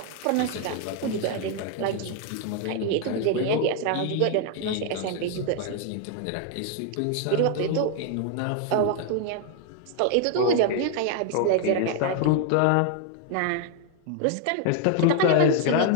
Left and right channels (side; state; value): both; different; correlation 0.01